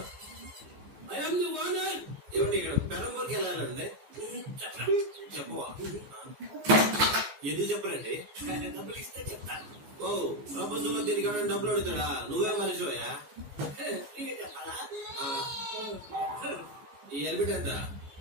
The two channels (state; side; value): late; left; 14 ms